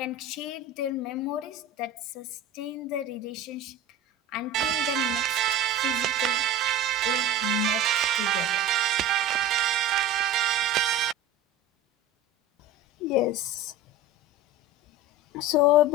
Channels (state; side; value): normal; both; correlation 0.32